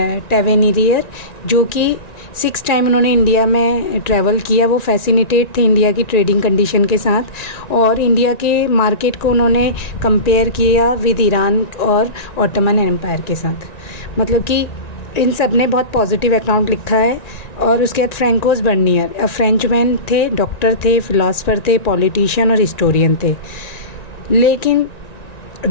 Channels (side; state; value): right; late; 1.9 ms